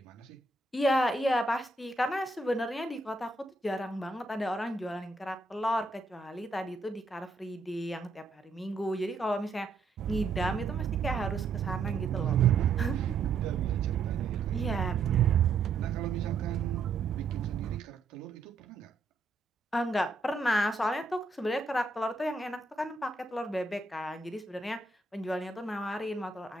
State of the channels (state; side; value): quieter; left; 3.7 dB